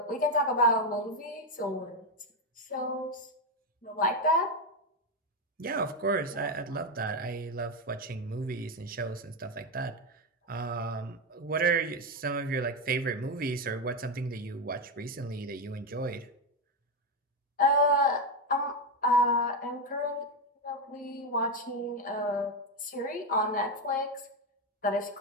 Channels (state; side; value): normal; both; correlation 0.09